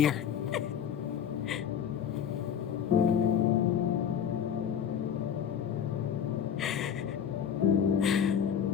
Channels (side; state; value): right; quieter; 8.3 dB